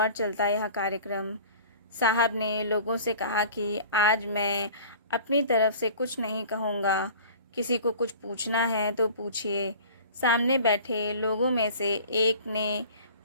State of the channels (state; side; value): inverted; both; correlation -0.44